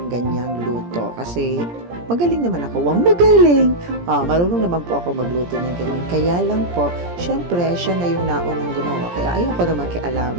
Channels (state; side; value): late; left; 17 ms